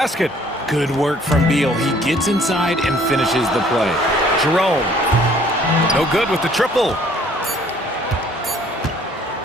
Good work from Beal. He gets inside and finishes the play. Jerome. No good with the triple.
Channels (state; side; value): normal; both; correlation 0.58